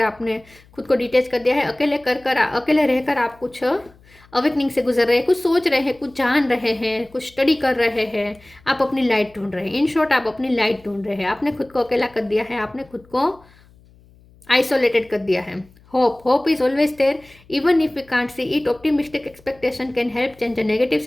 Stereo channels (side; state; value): left; noise; hum, 28 dB below the sound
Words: आपने खुद को डिटेच कर दिया है, अकेले रहकर आप कुछ अवेकनिंग से गुजर रहे हैं, कुछ सोच रहे हैं, कुछ जान रहे हैं, कुछ स्टडी कर रहे हैं, आप अपनी लाइट ढूंढ रहे हैं। इन शॉर्ट आप अपनी लाइट ढूंढ रहे हैं, आपने खुद को अकेला कर दिया है, आपने खुद को आइसोलेटेड कर दिया है। Hope is always there, even if we can't see it. Optimistic expectation can help change a negative